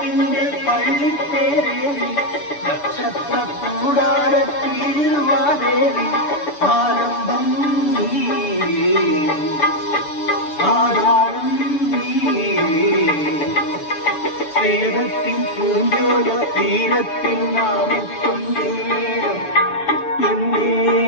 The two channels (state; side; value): late; right; 6.8 ms